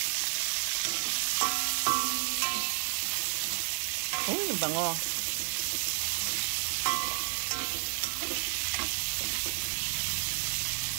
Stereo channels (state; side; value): silent; left; 57 dB below the other